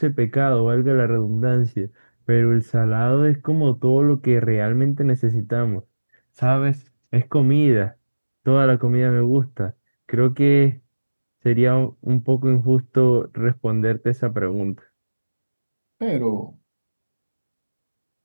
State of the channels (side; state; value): both; inverted; correlation -1.00